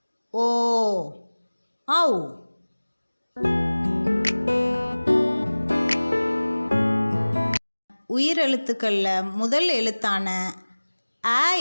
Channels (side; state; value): both; inverted; correlation -1.00